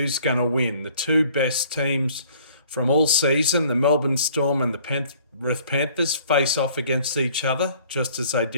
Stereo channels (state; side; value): inverted; both; correlation -0.56